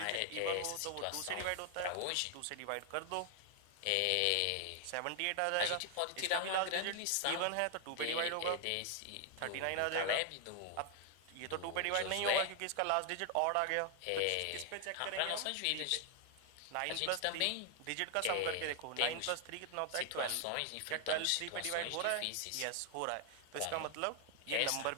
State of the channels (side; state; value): both; different; correlation 0.00